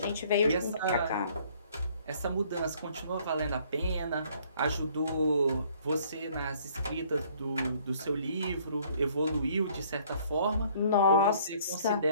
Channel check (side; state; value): both; inverted; correlation -0.60